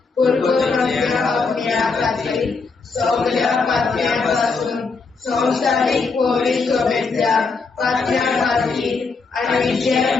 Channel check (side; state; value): right; quieter; 4.5 dB